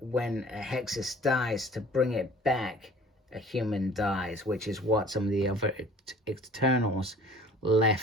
when a hexes dies, to bring it back, a human dies, which is what some of the other Eternals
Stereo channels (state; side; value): normal; both; correlation 0.49